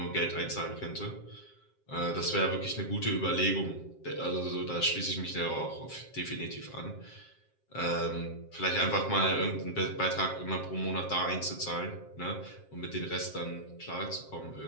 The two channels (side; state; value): right; late; 7.5 ms